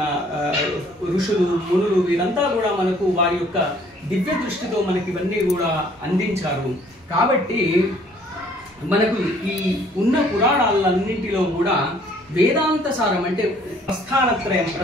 ఋషులు, మునులు. వీరంతా కూడా మనకు వారి యొక్క దివ్య దృష్టితో మనకి ఇవన్నీ కూడా అందించారు. కాబట్టి మనకు ఈ ఉన్న పురాణాలన్నింటిలో కూడా వేదాంత సారం అంటే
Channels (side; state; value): both; normal; correlation 0.59